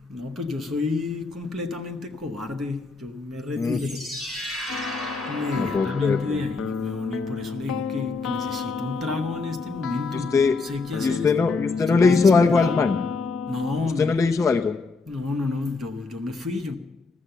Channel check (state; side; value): quieter; right; 4.1 dB